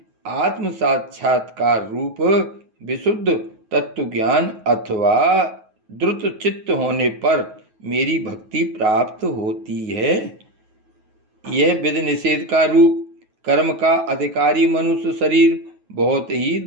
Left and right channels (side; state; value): left; late; 9.3 ms